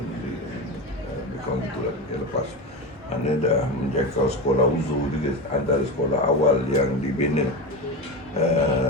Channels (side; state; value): both; normal; correlation 0.21